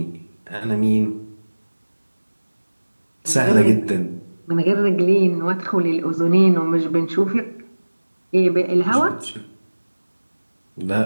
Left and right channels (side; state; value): both; inverted; correlation -1.00